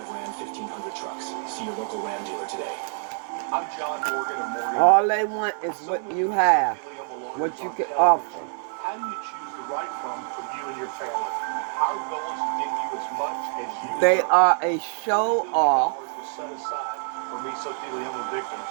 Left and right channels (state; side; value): silent; left; 58 dB below the other